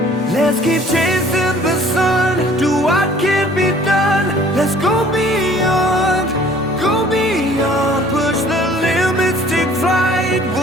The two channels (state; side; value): normal; both; correlation 0.53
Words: Let's keep chasing the sun, do what can be done. Let's go beyond, push the limits, take flight.